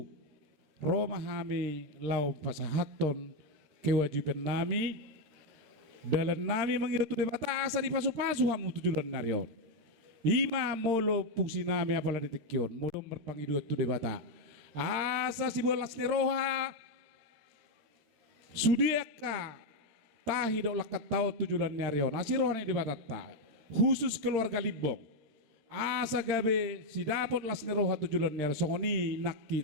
Roma hami lau pasahaton kewajiban nami dalam nami mengirutu di bata asa di pasu-pasu hamu tujulan narion. Ima molo fungsi nami apala ditikyon molo merpangidu tu di bata asa si bolas neroha sudiaka tahi dok lakat tau tujulan narion asirohan di bata ta khusus keluarga libong asa gabe si dapot las neroha tujulan narion songoni nak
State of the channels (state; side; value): late; left; 13 ms